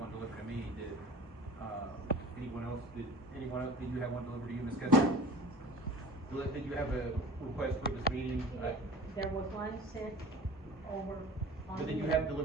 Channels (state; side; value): normal; both; correlation 0.42